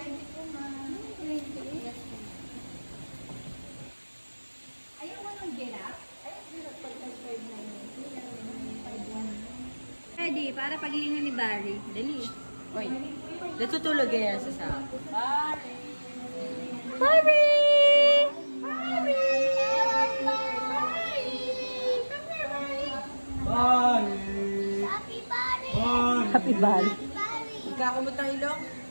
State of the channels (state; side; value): inverted; both; correlation -1.00